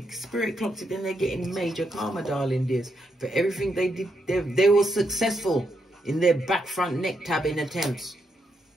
Spirit clocked it, then they're getting major karma, darling dears. For everything they did, they were successful in their back front neck tabbing attempts.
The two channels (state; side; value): normal; both; correlation 0.80